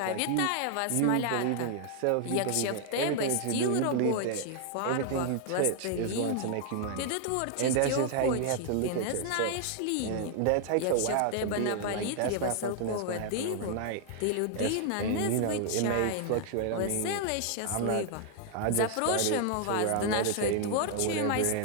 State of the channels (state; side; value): different; both; correlation 0.00